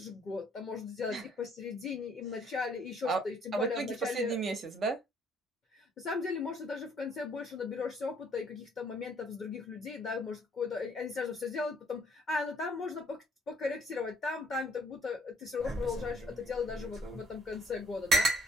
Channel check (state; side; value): normal; both; correlation 0.63